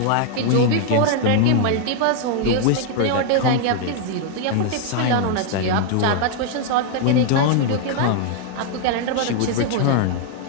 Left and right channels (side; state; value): both; different; correlation 0.00